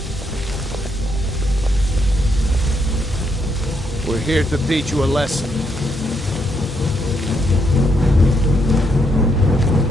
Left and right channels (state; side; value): normal; both; correlation 0.76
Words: We're here to teach you a lesson.